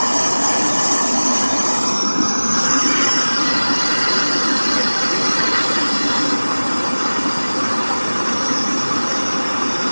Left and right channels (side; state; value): both; inverted; correlation -1.00